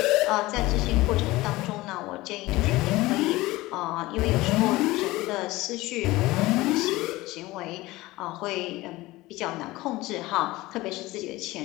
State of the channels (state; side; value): quieter; right; 19.2 dB